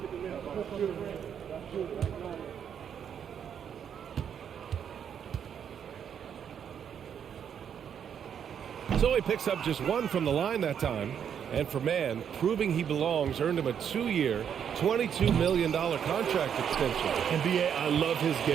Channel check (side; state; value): left; quieter; 8.3 dB